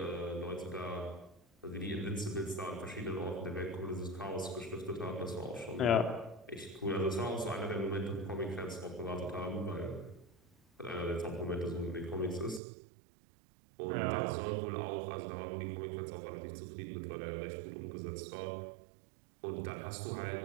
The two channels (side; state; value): left; drops out; at 12.6 s